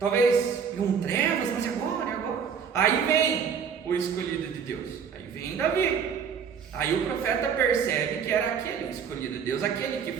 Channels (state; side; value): quieter; left; 6.9 dB